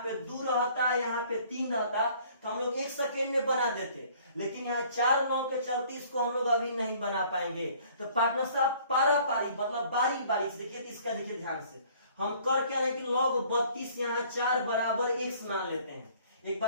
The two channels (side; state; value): both; inverted; correlation -0.56